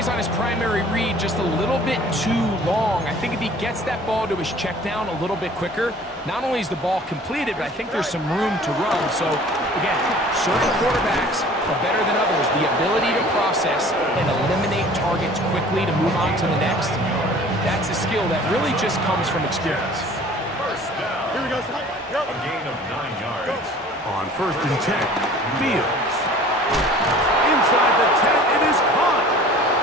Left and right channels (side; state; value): both; normal; correlation 0.48